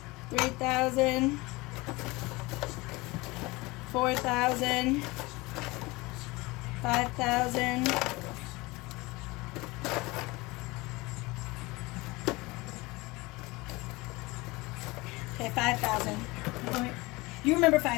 3,000, 4,000, 5,000, 5,000. You remember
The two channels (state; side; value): quieter; right; 22.8 dB